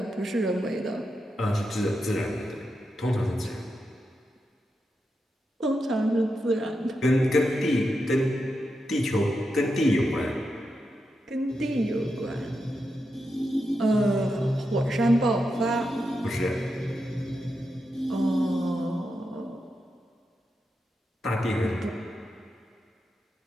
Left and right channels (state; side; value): normal; both; correlation 0.87